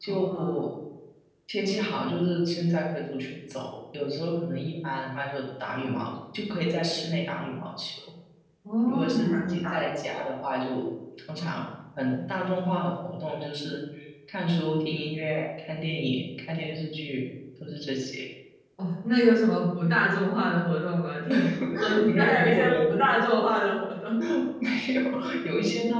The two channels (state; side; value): identical; both; correlation 1.00